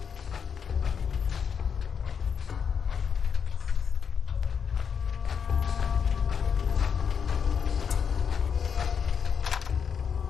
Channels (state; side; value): quieter; right; 6.8 dB